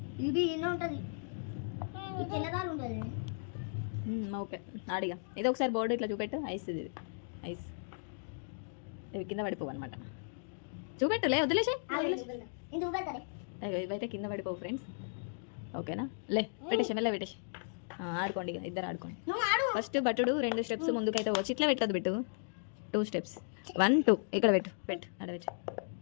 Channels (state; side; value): silent; right; digital silence